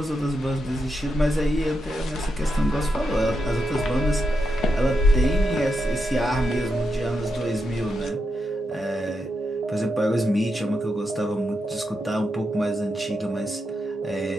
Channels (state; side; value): normal; both; correlation 0.85